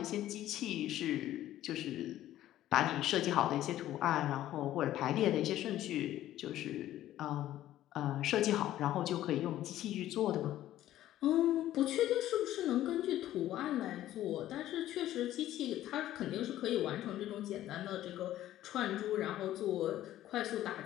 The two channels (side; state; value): right; quieter; 13.4 dB